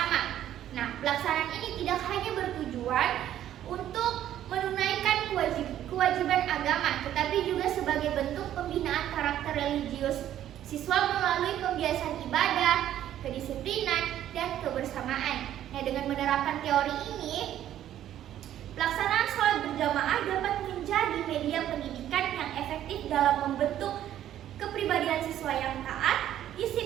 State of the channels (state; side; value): quieter; left; 11.7 dB